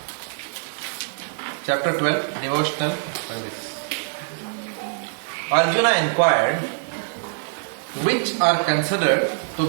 Chapter 12, Devotional Service. Arjuna inquired, which are considered to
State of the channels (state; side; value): silent; left; digital silence